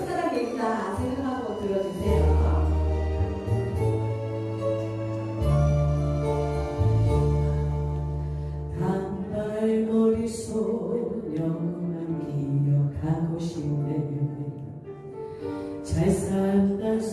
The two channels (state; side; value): identical; both; correlation 1.00